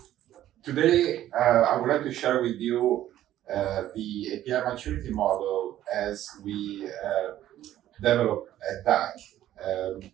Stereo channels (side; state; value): left; quieter; 12.9 dB